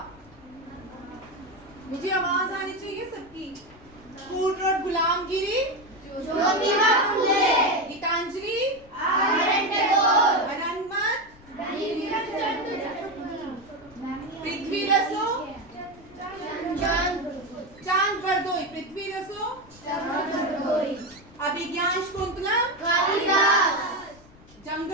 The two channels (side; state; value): left; noise; rumble, 24 dB below the sound